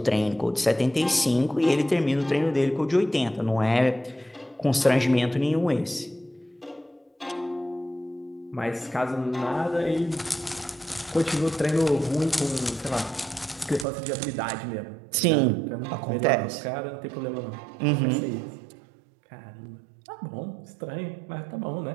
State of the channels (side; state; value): left; drops out; at 13.9 s